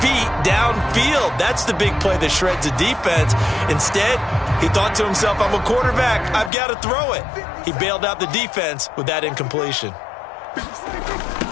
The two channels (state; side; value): drops out; right; at 6.5 s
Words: feet downfield. That's the big play that shreds the defense. Instead, he thought to himself, I'm a quarterback. I've got to throw it. He bailed out the defense with that incompletion.